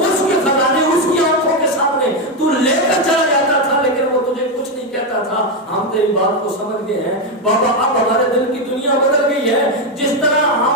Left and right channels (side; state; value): both; normal; correlation 0.07